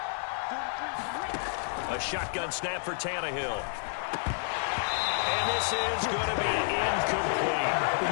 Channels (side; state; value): right; silent; 58 dB below the other